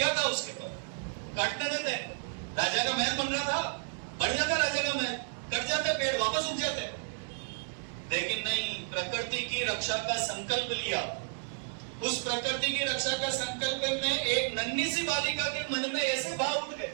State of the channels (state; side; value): silent; left; digital silence